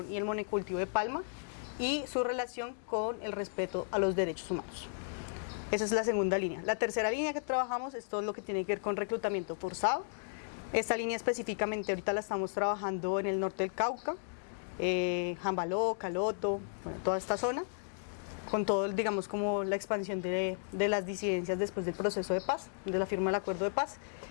y el monocultivo de palma y su relación con el respeto a los derechos humanos. Esa es la segunda línea. La tercera línea que trabajamos es todo lo que tiene que ver con reclutamiento forzado. Esta línea específicamente ahorita la estamos trabajando en el norte del Cauca, Jambaló, Caloto, bueno, toda esta zona, con todo, digamos, como la expansión de las disidencias después del proceso de paz, de la firma del acuerdo de paz.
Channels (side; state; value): right; silent; digital silence